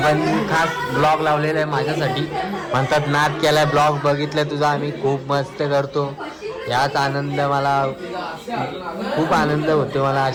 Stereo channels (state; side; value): identical; both; correlation 1.00